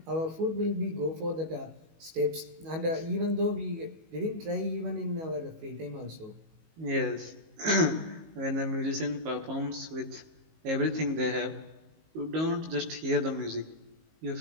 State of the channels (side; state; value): left; late; 19 ms